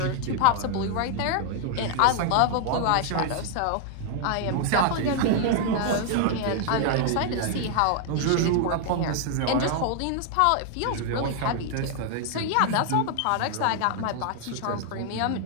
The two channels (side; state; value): both; different; correlation 0.00